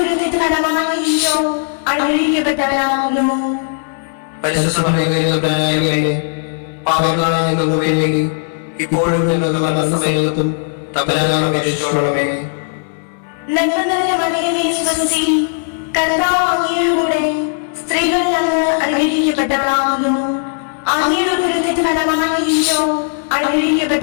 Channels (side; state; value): right; silent; digital silence